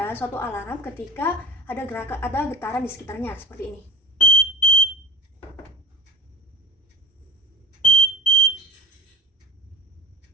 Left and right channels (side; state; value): both; normal; correlation 0.29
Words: suatu alarm ketika ada getaran di sekitarnya seperti ini.